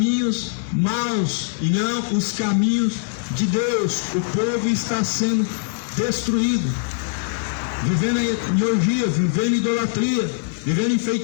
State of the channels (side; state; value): right; silent; 64 dB below the other